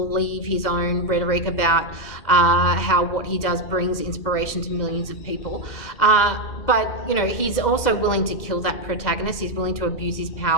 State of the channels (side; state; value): right; late; 2.1 ms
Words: his own rhetoric about how what he does brings inspiration to millions of people. But, you know, he's also willing to kill that protagonist. He's willing to abuse his